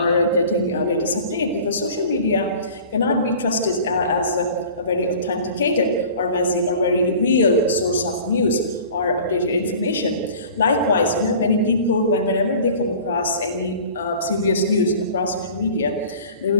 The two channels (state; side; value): inverted; both; correlation -0.44